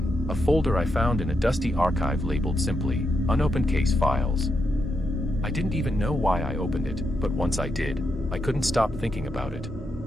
a folder I found in a dusty archive labeled simply, Unopened Case Files. I didn't even know why I opened it, but once I did, I couldn't stop thinking about it.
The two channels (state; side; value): normal; both; correlation 0.83